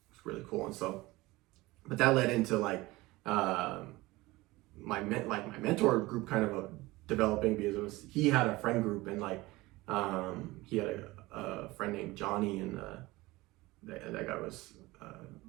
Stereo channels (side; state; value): left; quieter; 20.3 dB